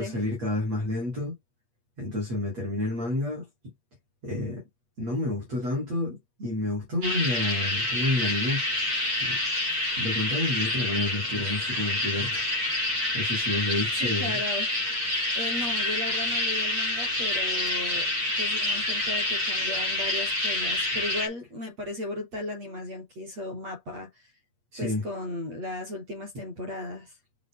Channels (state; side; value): late; left; 8.4 ms